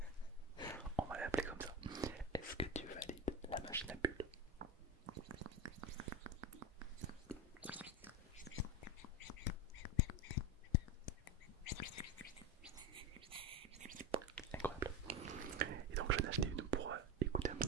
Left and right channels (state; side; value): normal; both; correlation 0.20